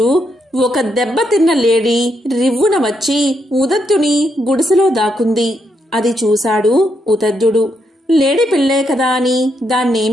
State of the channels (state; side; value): normal; both; correlation 0.79